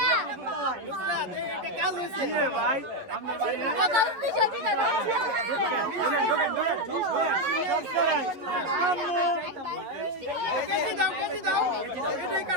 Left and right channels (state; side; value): late; left; 11 ms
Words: এটা কাজ হইছে কি রে ভাই আপনার বাড়ি না কত স্পেশাল ফিতা সব করেন আম্মু কেজি দাও এটাই